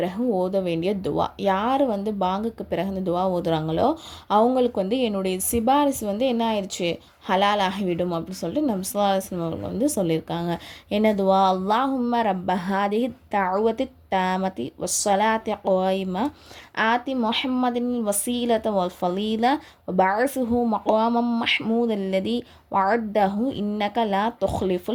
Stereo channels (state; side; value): identical; both; correlation 1.00